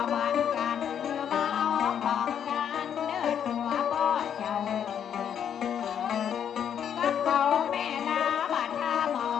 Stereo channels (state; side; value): quieter; right; 8.7 dB